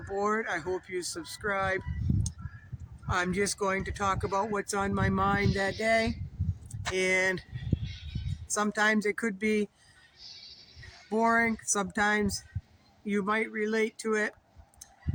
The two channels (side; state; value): both; identical; correlation 1.00